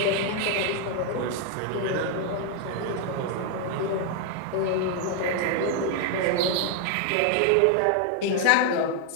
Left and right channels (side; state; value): both; different; correlation 0.00